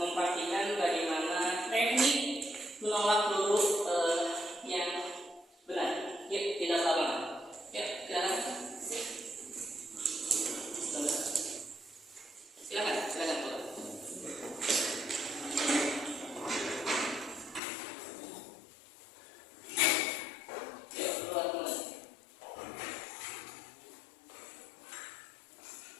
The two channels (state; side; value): drops out; right; at 17.6 s